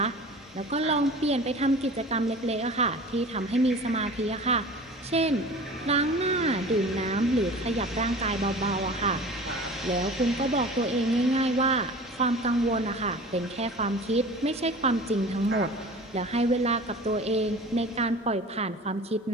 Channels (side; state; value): both; normal; correlation 0.39